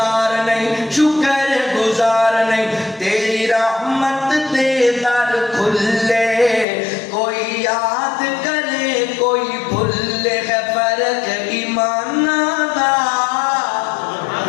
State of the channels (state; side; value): drops out; right; at 6.7 s